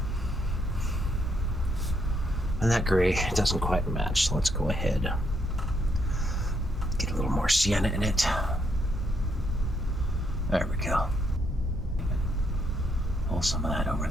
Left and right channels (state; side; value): normal; both; correlation 0.75